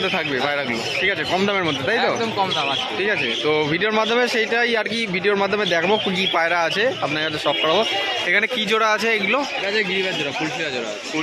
থাকবে পায়রাগুলো, ঠিক আছে, কম দামের মধ্যে, তাই তো? একদম কম দাম আছে, ঠিক আছে। তো ভিডিওর মাধ্যমে সেইটাই আর কি, ভিডিওর মাধ্যমে দেখবো কী পায়রা আছে আপনার কাছে শখ করাবো। এখানে কি জোড়া আছে এগুলো? গিরিবাজ জোড়া, ফুলশিরা জোড়া।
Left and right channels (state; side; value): identical; both; correlation 1.00